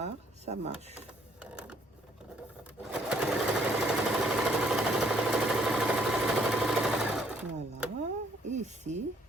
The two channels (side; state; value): both; normal; correlation 0.66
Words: ça marche. Voilà, et ici,